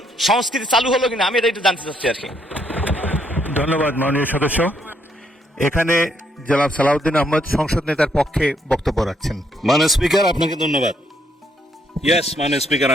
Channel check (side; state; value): both; normal; correlation 0.72